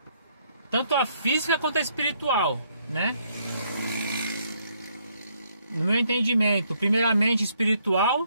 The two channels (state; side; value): inverted; both; correlation -0.71